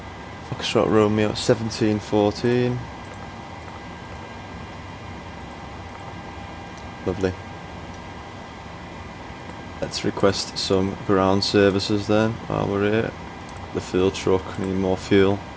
Foxtrot Romeo 1714. Lovely. Let's request some ground services then while we're here. The fuel truck, need more fuel.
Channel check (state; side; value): identical; both; correlation 1.00